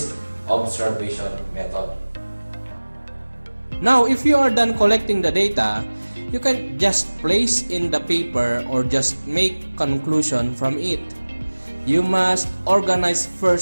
observation method. Now, if you are done collecting the data, you can just place in the paper or just make conclusion from it. You must organize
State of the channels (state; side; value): inverted; both; correlation -1.00